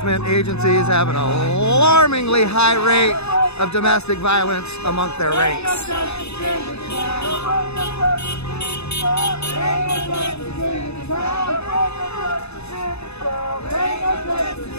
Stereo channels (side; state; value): right; late; 0.80 ms